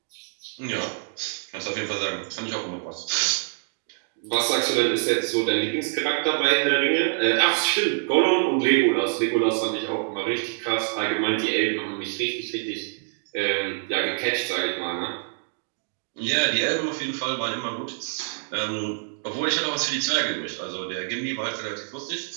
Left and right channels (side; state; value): left; silent; digital silence